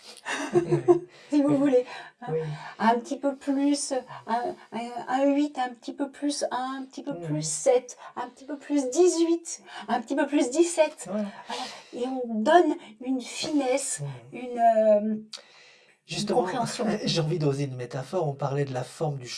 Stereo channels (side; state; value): both; identical; correlation 1.00